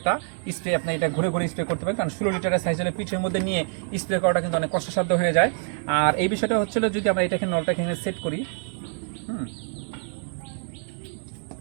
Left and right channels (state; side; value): silent; left; 61 dB below the other